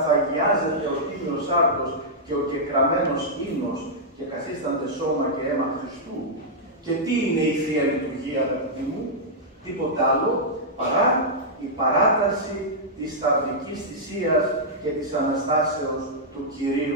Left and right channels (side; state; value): both; normal; correlation -0.09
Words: ο Τίμιος Άρτος και ο κεκραμένος ίνος και καθίστανται σώμα και αίμα Χριστού. Και τι είναι η Θεία Λειτουργία, αγαπητοί μου? Τίποτα άλλο παρά η παράταση της σταυρικής θυσίας και της Αναστάσεως του